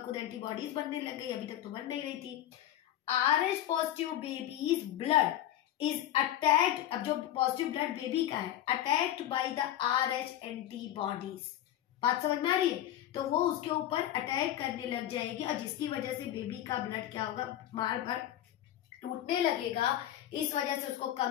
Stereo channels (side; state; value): right; quieter; 12.3 dB